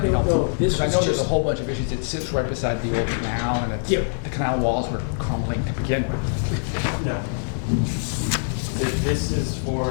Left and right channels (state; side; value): silent; right; digital silence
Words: know. This I was know there's a just, whole bunch of issues. It sits right beside the old canal, and it's, Yep. the canal walls were crumbling to begin with. No. This is